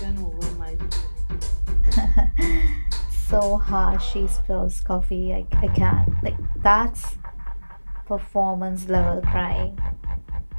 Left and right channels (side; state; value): both; inverted; correlation -1.00